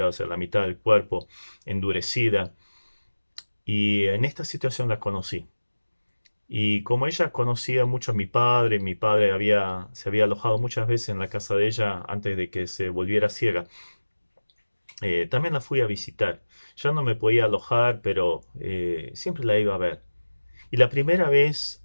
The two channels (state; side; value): inverted; both; correlation -1.00